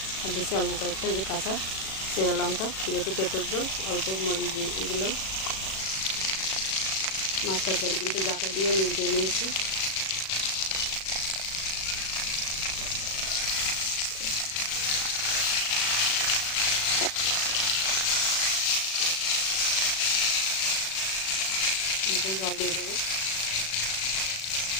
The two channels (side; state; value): right; late; 37 ms